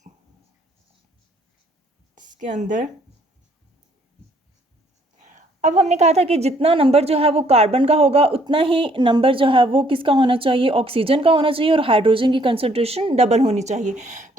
इसके अंदर अब हमने कहा था कि जितना नंबर जो है वो कार्बन का होगा उतना ही नंबर जो है वो किसका होना चाहिए, ऑक्सीजन का होना चाहिए, और हाइड्रोजन की कंसंट्रेशन डबल होनी चाहिए।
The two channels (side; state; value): both; normal; correlation 0.65